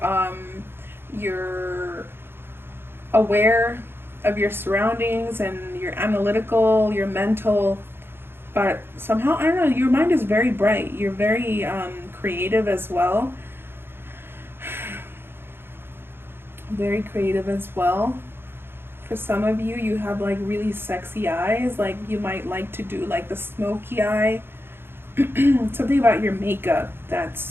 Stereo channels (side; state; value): left; late; 0.11 ms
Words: You're aware of your surroundings, and you're analytical. You're mental, but somehow I don't know. Your mind is very bright. You're very creative as well. Very creative as well. For some of you, you have like really sexy eyes. Like you might like to do like the smoky eye. Something about your makeup